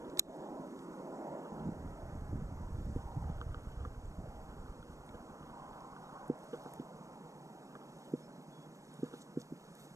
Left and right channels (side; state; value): left; late; 0.15 ms